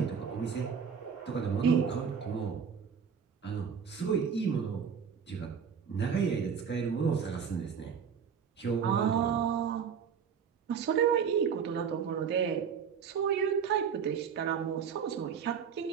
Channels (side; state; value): left; quieter; 6.9 dB